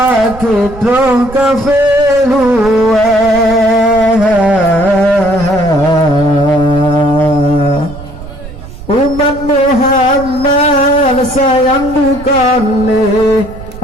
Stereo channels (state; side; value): noise; right; rumble, 15 dB below the sound